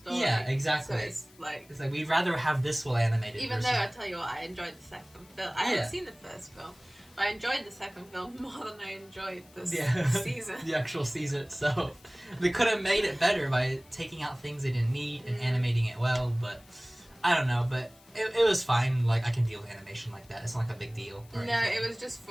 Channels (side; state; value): left; noise; hiss, 27 dB below the sound